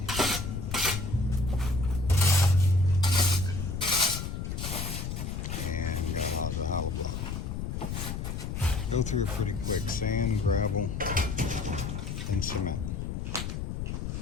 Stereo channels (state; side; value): noise; left; rumble, 4 dB below the sound